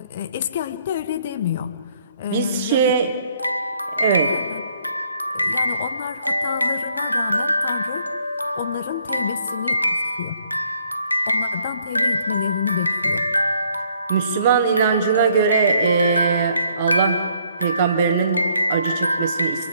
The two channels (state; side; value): inverted; both; correlation -0.67